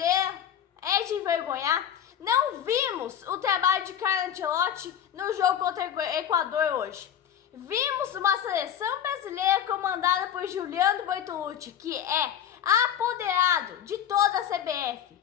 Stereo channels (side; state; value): right; quieter; 9.7 dB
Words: é de envergonhar. Não vimos o trabalho de Carlo Ancelotti no jogo contra o Equador hoje. Vimos uma seleção brasileira comandada por Giuliano Bortolucci, que é apoderado de toda a CBF,